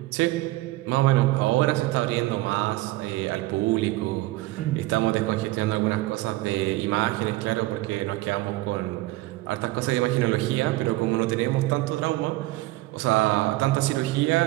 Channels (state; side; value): quieter; left; 18.7 dB